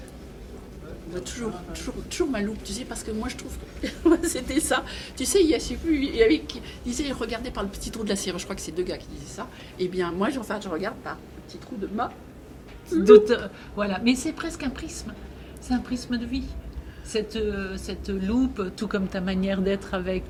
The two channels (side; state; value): both; identical; correlation 1.00